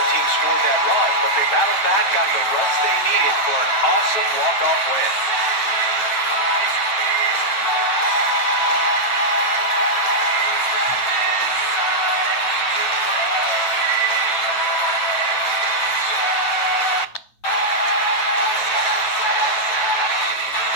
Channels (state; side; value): late; right; 9.4 ms